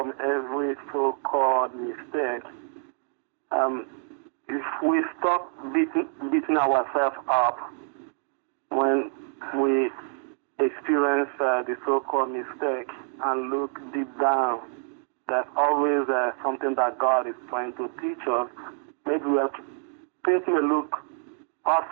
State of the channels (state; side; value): silent; left; 59 dB below the other